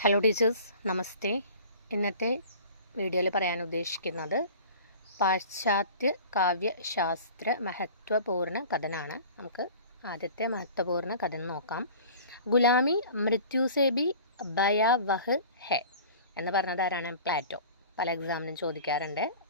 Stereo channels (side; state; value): both; inverted; correlation -0.43